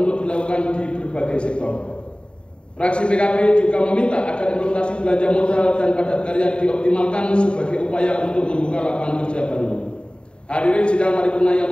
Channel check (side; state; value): right; late; 0.054 ms